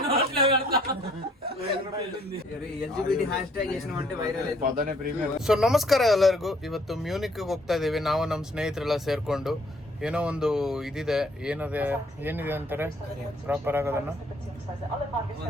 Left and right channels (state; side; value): normal; both; correlation 0.63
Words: ಸೊ ನಮಸ್ಕಾರ ಎಲ್ಲರಿಗೂ. ಇವತ್ತು ಮ್ಯೂನಿಕ್ ಹೋಗ್ತಾ ಇದೀವಿ ನಾವು ನಮ್ಮ ಸ್ನೇಹಿತರೆಲ್ಲ ಸೇರ್ಕೊಂಡು. ಏನೋ ಒಂದು ಇದಿದೆ, ಏನಿದೆ ಅಂತಾರೆ ಪ್ರಾಪರ್ ಆಗೋದನ್ನ,